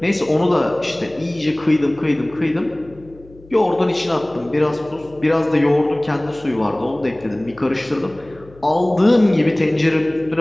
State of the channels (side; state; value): left; noise; hum, 24 dB below the sound